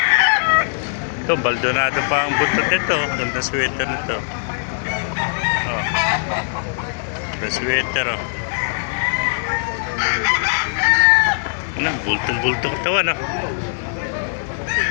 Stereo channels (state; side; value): silent; right; digital silence